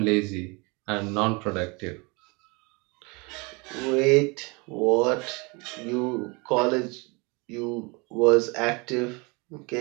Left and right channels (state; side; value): quieter; left; 28.5 dB